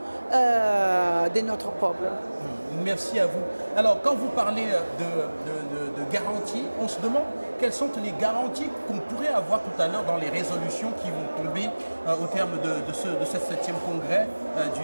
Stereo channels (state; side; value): inverted; both; correlation -1.00